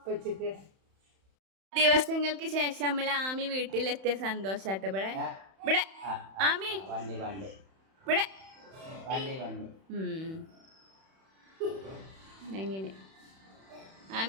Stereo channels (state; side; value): late; left; 31 ms